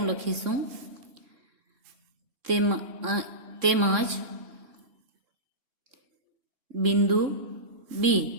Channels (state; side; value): late; left; 3.6 ms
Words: લખીશું. તેમજ બિંદુ બી